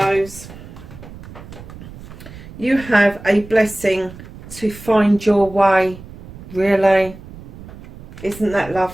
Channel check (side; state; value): right; noise; rumble, 16 dB below the sound